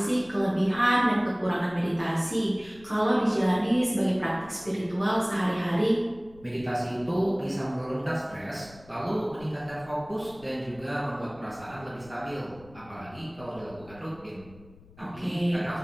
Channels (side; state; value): left; noise; rumble, 22 dB below the sound